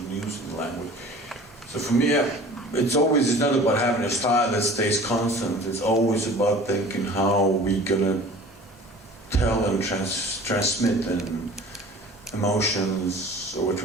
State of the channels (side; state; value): both; normal; correlation 0.44